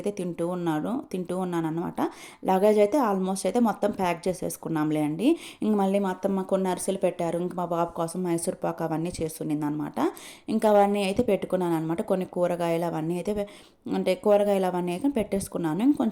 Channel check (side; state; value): both; identical; correlation 1.00